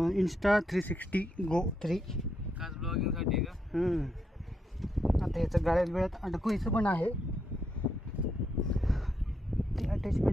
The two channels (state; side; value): normal; both; correlation 0.80